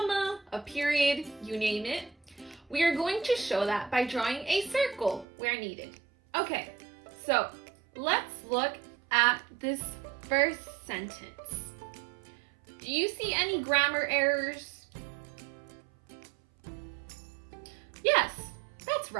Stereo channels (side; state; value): left; drops out; at 5.2 s